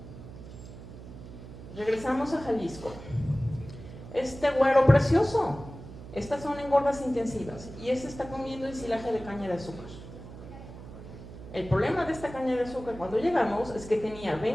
Regresamos a Jalisco. Este güero precioso, estas son engordas intensivas y este está comiendo ensilaje de caña de azúcar. El problema de esta caña de azúcar cuando llegamos es que tenía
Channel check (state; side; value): noise; right; hum, 14 dB below the sound